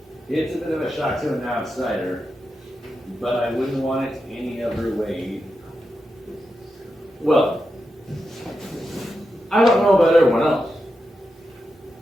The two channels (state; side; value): normal; both; correlation 0.88